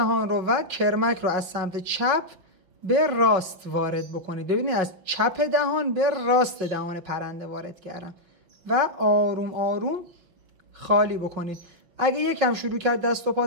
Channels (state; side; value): late; left; 5.5 ms